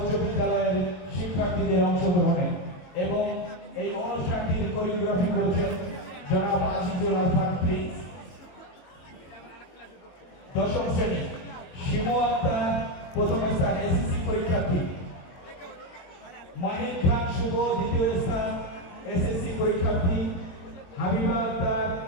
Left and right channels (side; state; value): right; late; 22 ms